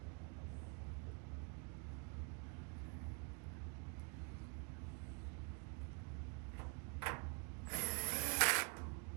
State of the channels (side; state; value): left; quieter; 36.7 dB